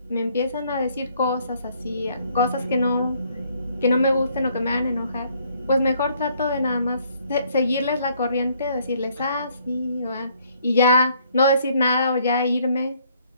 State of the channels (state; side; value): inverted; both; correlation -0.65